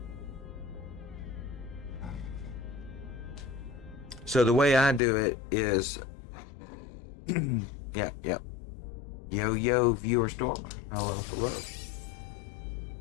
the way I do it is, yep. Yo, viewer stormer. Hello.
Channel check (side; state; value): right; drops out; at 5.0 s